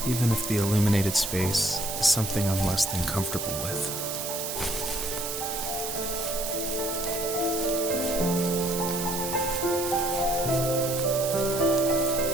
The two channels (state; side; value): noise; right; hiss, 5 dB below the sound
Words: even if the illuminated space is something I'm less than comfortable with.